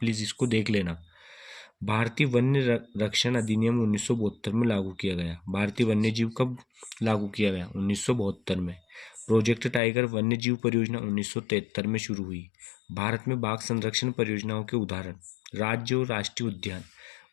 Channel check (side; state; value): right; drops out; at 9.8 s